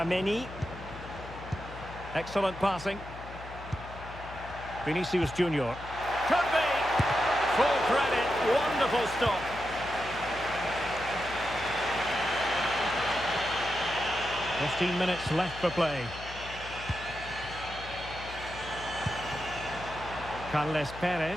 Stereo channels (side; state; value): left; noise; hum, 14 dB below the sound